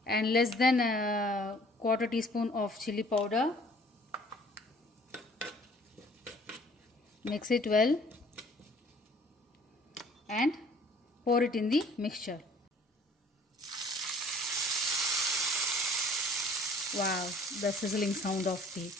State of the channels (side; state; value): both; normal; correlation 0.54